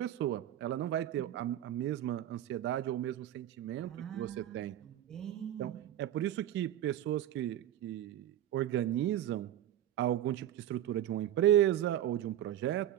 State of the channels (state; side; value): quieter; left; 12.0 dB